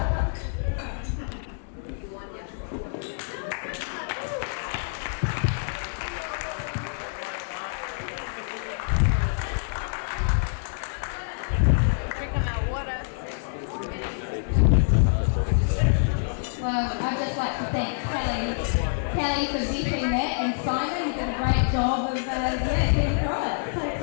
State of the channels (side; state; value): right; silent; digital silence